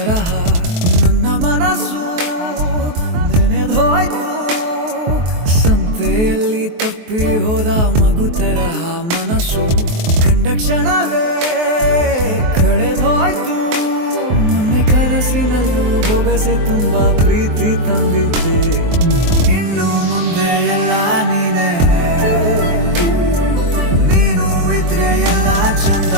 ನನ್ನ ಮನಸ್ಸು ನೆನೆದೋಯ್ತು. ಸಂತೆಯಲ್ಲಿ ತಪ್ಪಿ ಹೋದ ಮಗು ತರಹ ಮನಸ್ಸು ಕಂಡ ಕ್ಷಣವೇ ಕಳೆದೋಯ್ತು. ಮೊನ್ನೆ ಕನಸಿನಲ್ಲೂ ಬೊಗಸೆ ತುಂಬಾ ಪ್ರೀತಿ ತಂದಿದ್ದೆ. ಇನ್ನು ಮುಂದೆ ಎಲ್ಲ ನೀನೇ, ನೀನು ಇದ್ರೆ ಎಲ್ಲ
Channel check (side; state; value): left; late; 23 ms